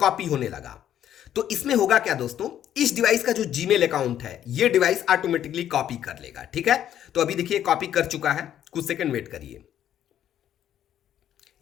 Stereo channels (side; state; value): right; quieter; 10.7 dB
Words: होने लगा। तो इसमें होगा क्या दोस्तों, इस डिवाइस का जो जीमेल अकाउंट है ये डिवाइस ऑटोमेटिकली कॉपी कर लेगा। ठीक है, तो अभी देखिए कॉपी कर चुका है, कुछ सेकंड वेट करिए।